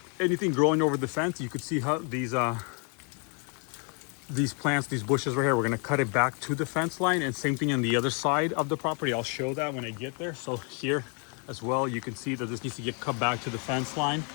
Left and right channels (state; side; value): quieter; right; 37.1 dB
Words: anything growing over the fence, you could see how these plants, these bushes right here, we're going to cut it back to the fence line, and same thing on the other side of the property. I'll show that when I get there. So here as well, you can see that this needs to get cut back to the fence line.